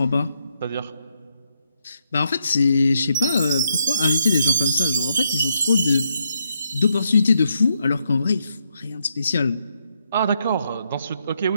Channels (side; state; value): both; inverted; correlation -0.79